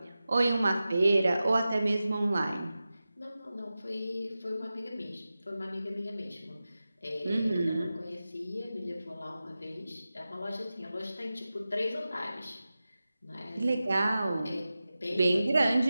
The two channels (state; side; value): inverted; both; correlation -0.94